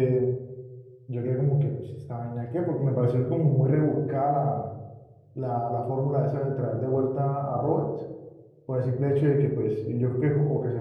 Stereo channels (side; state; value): both; identical; correlation 1.00